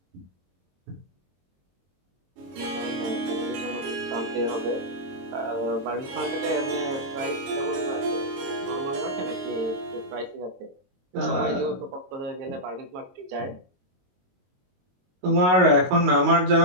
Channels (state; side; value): late; left; 22 ms